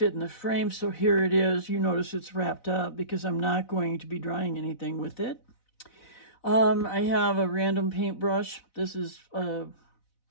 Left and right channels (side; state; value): right; late; 4.0 ms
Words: in the frame, so here it is. You notice it's wrapped up because I'm not going to be drying anything with it. I have a random paintbrush. This is